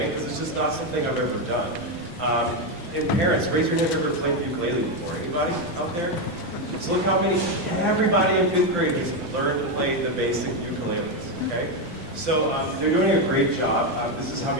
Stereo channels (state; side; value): normal; both; correlation 0.07